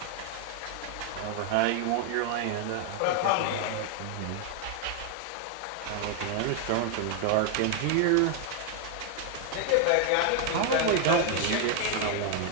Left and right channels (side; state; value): both; different; correlation 0.00